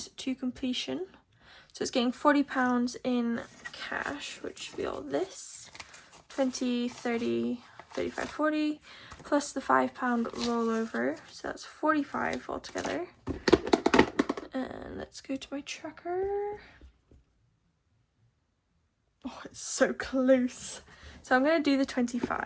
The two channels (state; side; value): identical; both; correlation 1.00